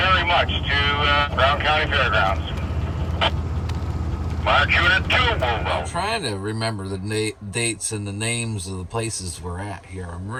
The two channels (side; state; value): both; identical; correlation 1.00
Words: much to Brown County Fairgrounds. March Unit 2, move I'm out. trying to remember the dates and the names of the places we're at here. I'm